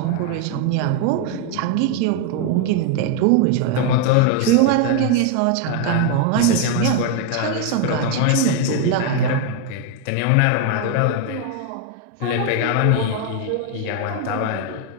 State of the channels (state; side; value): different; both; correlation 0.01